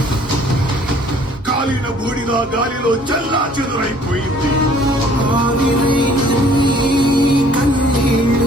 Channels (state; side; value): normal; both; correlation 0.56